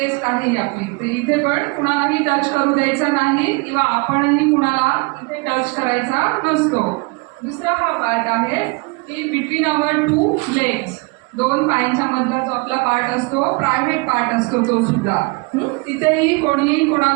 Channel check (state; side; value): quieter; left; 28.3 dB